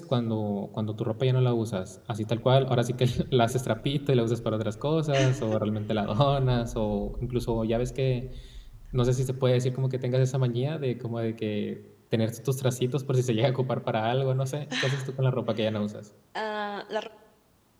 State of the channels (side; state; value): both; identical; correlation 1.00